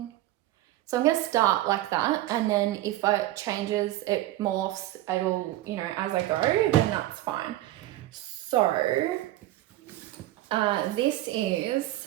So I'm going to start like that, and then if it changes, it morphs, it'll, you know, as I go, then that's fine. So this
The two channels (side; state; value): left; quieter; 15.7 dB